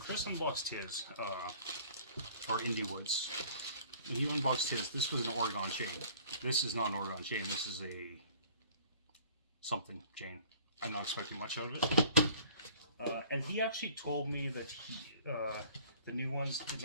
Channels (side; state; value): both; inverted; correlation -0.52